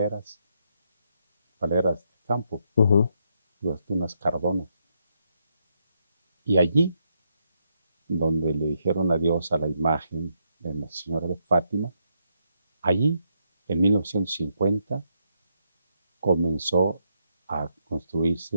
de campo, unas cardonas. Y allí, donde le dijeron adiós a la imagen de la Señora de Fátima, allí, en 1950, comenzó a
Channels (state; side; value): inverted; both; correlation -0.78